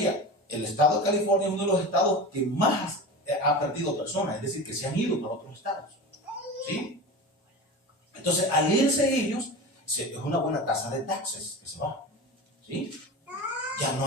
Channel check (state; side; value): normal; both; correlation 0.29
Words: el estado de California es uno de los estados que más ha perdido personas, es decir, que se han ido para otros estados. ¿Sí? Entonces, al irse ellos, es una buena tasa de taxes que se va. ¿Sí? Ya